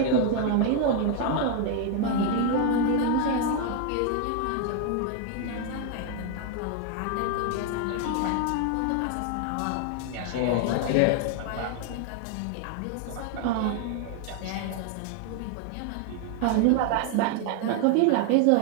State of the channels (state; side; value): different; both; correlation 0.01